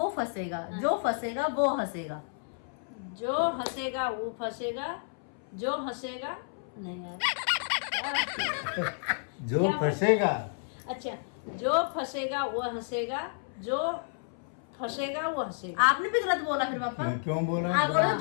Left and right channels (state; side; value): silent; right; 57 dB below the other